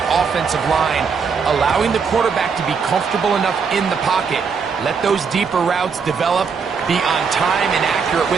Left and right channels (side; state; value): left; quieter; 5.8 dB